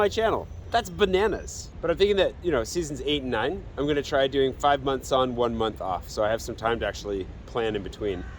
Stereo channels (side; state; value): both; identical; correlation 1.00